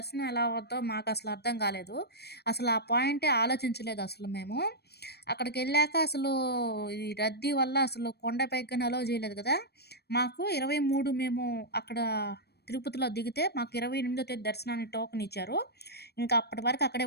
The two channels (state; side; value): late; right; 0.47 ms